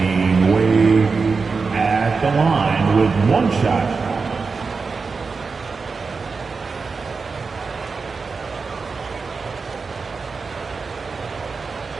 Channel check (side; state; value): left; quieter; 4.7 dB